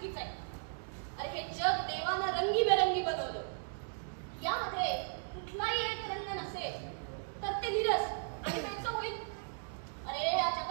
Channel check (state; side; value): silent; left; digital silence